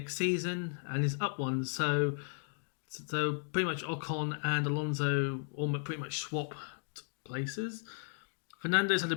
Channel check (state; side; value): silent; right; 54 dB below the other